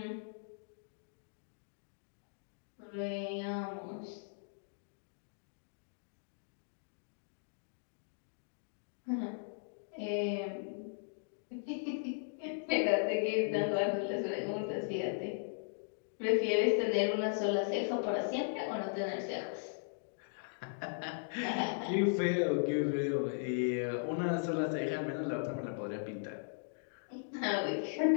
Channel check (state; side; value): silent; right; digital silence